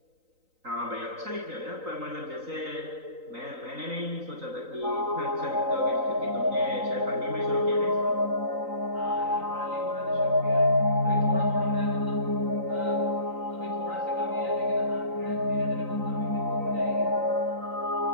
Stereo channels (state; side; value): late; left; 3.9 ms